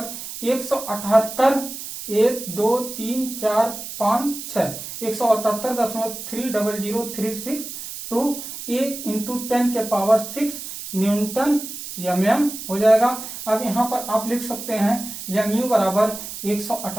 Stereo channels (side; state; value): right; noise; hiss, 9 dB below the sound